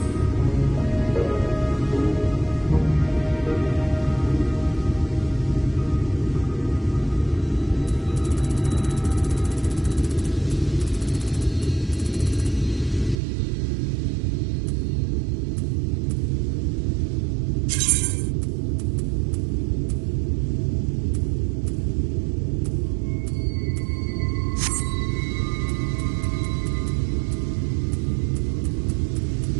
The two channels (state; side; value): drops out; left; at 13.2 s